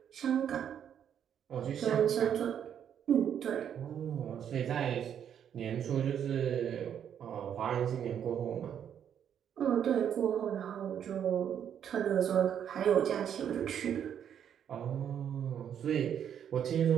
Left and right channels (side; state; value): left; quieter; 9.0 dB